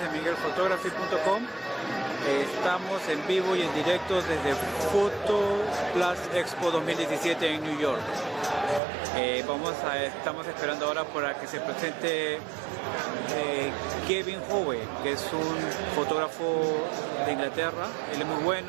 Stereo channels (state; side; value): drops out; left; at 8.8 s